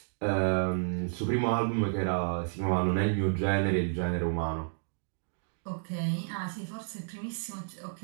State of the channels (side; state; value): left; silent; digital silence